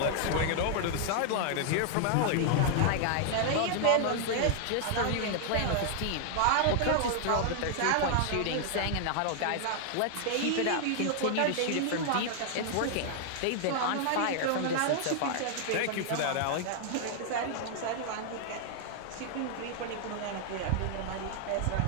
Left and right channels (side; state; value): both; different; correlation 0.00